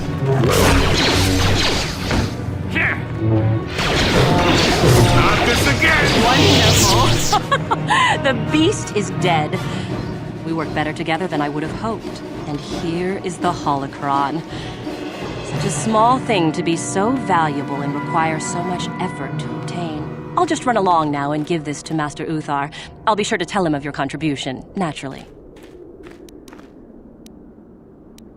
Not this again! Wonderful! The beast is dead. We work better together than I would have hoped. And here is the holocron. Such a small thing to be so valuable and require so much effort to obtain. I'll just run along now and give this to Master Uthar. I'll be sure to tell him of your contribution, naturally.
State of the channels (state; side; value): identical; both; correlation 1.00